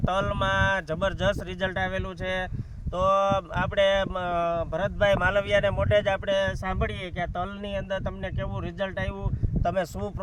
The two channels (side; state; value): both; identical; correlation 1.00